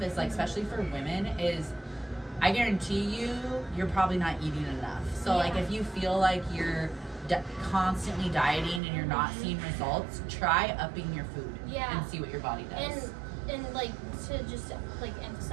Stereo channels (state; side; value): drops out; left; at 8.8 s